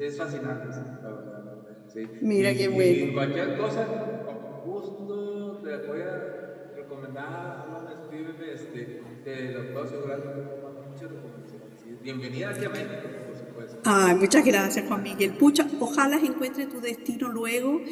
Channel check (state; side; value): identical; both; correlation 1.00